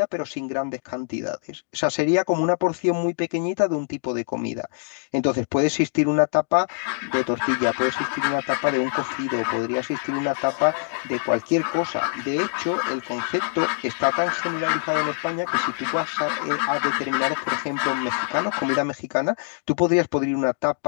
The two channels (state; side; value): silent; right; 63 dB below the other